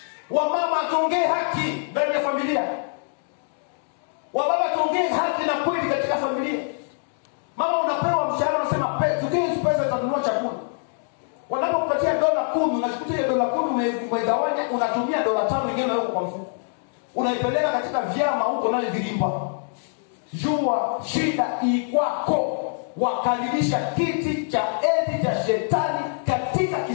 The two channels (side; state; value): right; silent; digital silence